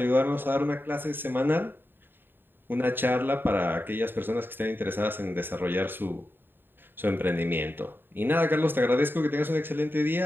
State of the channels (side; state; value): left; late; 0.096 ms